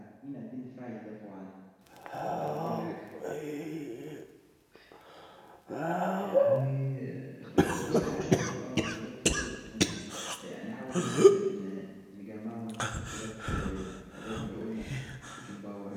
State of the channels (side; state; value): both; identical; correlation 1.00